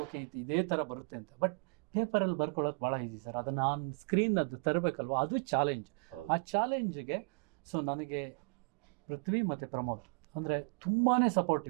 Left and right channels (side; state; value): left; quieter; 35.1 dB